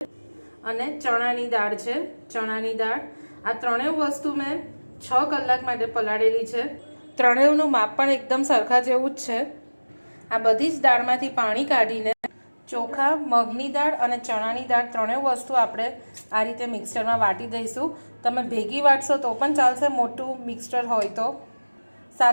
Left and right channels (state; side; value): inverted; both; correlation -1.00